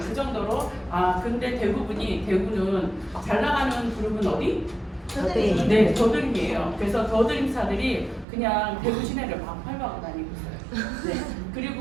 정도로. 근데 대구는 잘 나가는 그룹은 어디? 더드림. 네, 더드림이에요. 그래서 더드림사들이 그냥 대구 시내를 막 밟아고 다니고 있어요. 네,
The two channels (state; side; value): drops out; left; at 8.2 s